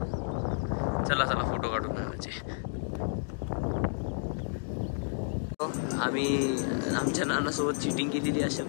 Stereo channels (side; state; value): right; silent; digital silence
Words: चला फोटो काढून आणायचे. आम्ही आमच्या नानासोबत चिटिंग केलेली अशा